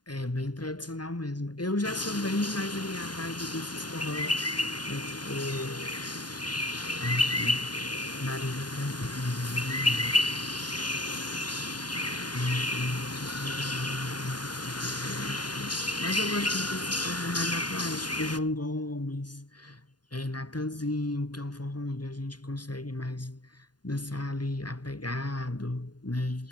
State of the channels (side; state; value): right; late; 0.70 ms